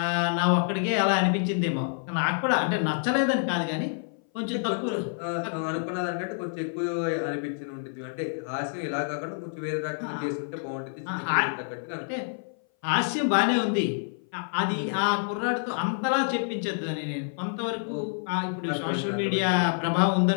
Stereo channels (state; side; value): silent; right; 58 dB below the other